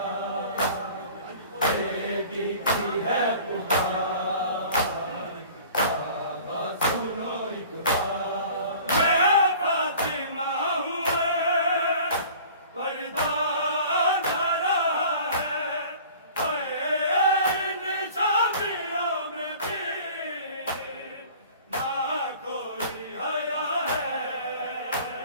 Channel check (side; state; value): both; inverted; correlation -0.46